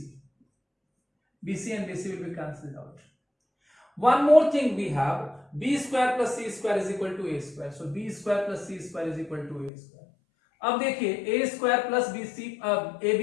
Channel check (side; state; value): right; drops out; at 9.7 s